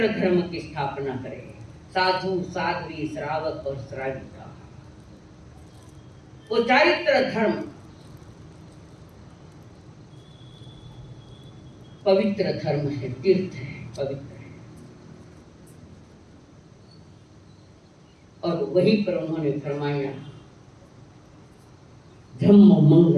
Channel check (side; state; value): both; identical; correlation 1.00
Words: धर्म की स्थापना करे साधु साध्वी श्रावक और श्राविका वो चारित्र धर्म पवित्र धर्म है तीर्थ है पवित्र है और वहीं पर उन्होंने फरमाया धम्म